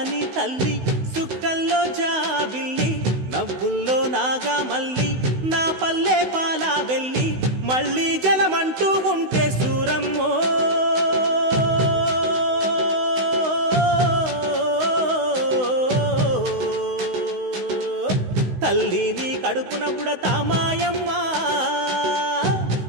తల్లి సుక్కల్లో జాబిల్లి నవ్వుల్లో నాగా మల్లి నా పల్లె పాలా వెళ్ళి మళ్ళీ జలమంటూ ఉంటే సూరమ్మో తల్లిని కడుపున బుడతా మాయమ్మ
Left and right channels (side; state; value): left; late; 16 ms